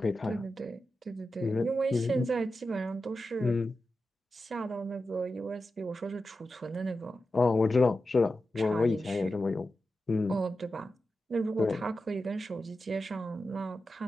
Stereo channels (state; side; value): normal; both; correlation 0.91